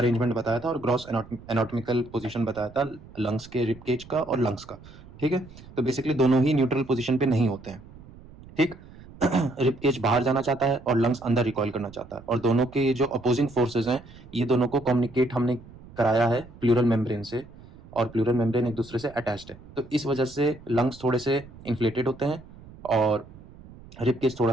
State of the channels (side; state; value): right; noise; rumble, 20 dB below the sound